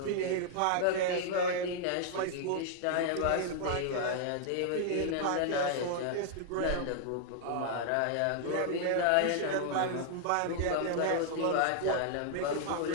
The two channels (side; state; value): both; different; correlation -0.01